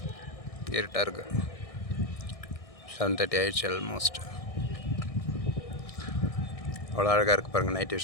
இருட்டாக இருக்குது. 7:30 ஆயிடுச்சு ஆல்மோஸ்ட். அவ்வளோ அழகாக இருக்குது பாருங்கள் நைட்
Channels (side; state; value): right; late; 1.6 ms